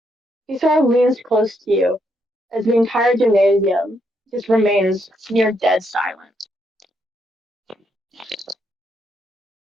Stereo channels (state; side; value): normal; both; correlation 0.77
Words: He sort of leans close to you as the entire gymnasium just remains near dead silent.